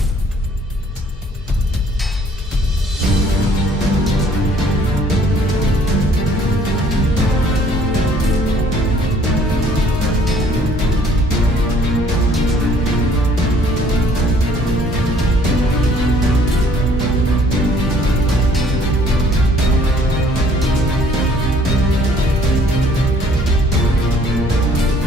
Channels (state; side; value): normal; both; correlation 0.59